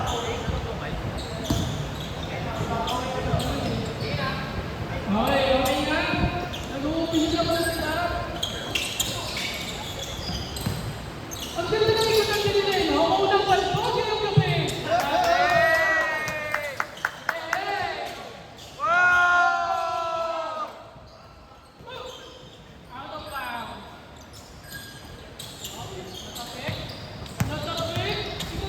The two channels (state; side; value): identical; both; correlation 1.00